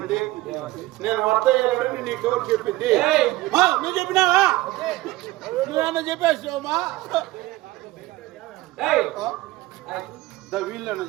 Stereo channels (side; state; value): left; quieter; 18.3 dB